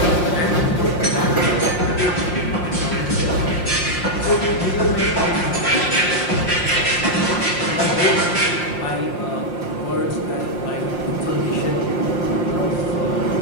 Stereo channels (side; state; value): right; late; 5.7 ms